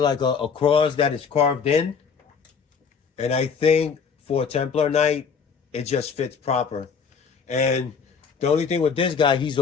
a cross that is carved in. And I think for a Templar Knight, it just fits proper. And the only thing with this guy, he's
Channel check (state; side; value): quieter; right; 6.0 dB